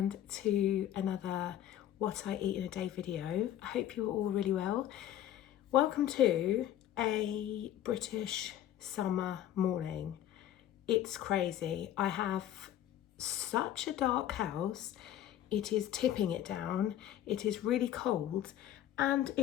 to another what I eat in a day video. I hope you're all really well. Welcome to a British summer morning. It's crazy. I have such a dark house. It is tipping it down. It is really cold and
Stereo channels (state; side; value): quieter; right; 11.7 dB